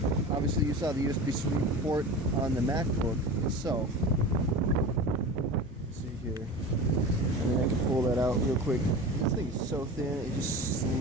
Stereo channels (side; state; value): both; normal; correlation 0.32